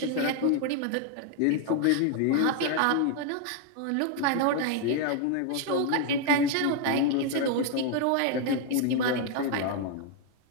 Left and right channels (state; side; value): different; both; correlation 0.00